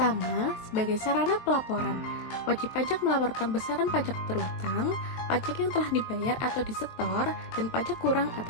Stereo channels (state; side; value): late; right; 22 ms